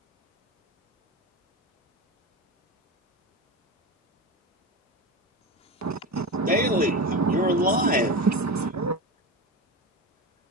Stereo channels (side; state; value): both; normal; correlation 0.22